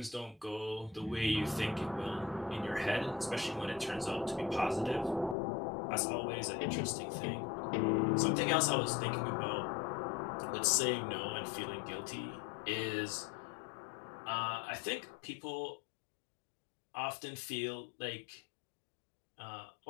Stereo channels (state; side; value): drops out; right; at 5.4 s